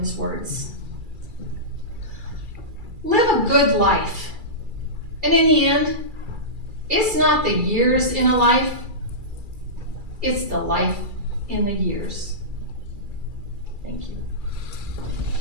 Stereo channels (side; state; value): left; late; 2.3 ms